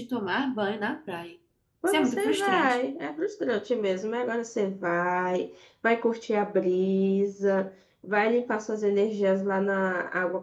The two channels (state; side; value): identical; both; correlation 1.00